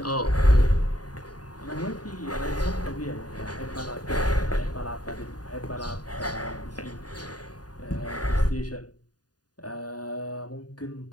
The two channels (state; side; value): late; right; 0.68 ms